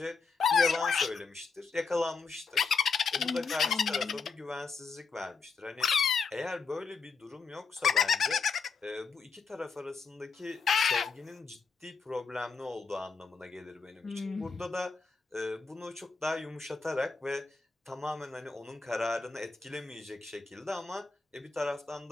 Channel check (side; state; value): right; quieter; 5.0 dB